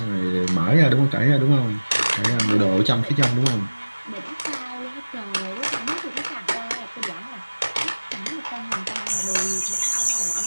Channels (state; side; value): inverted; both; correlation -1.00